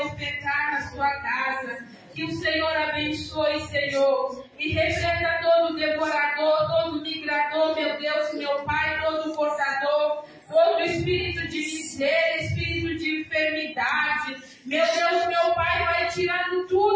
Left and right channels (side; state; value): both; identical; correlation 1.00